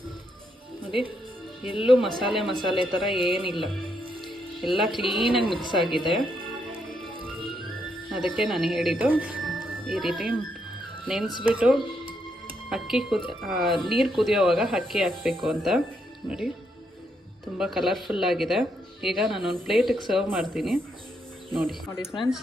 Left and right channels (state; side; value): normal; both; correlation 0.77